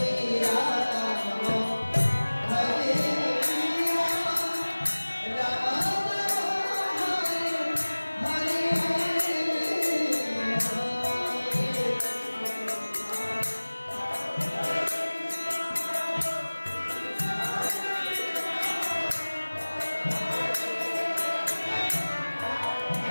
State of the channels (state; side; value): inverted; both; correlation -1.00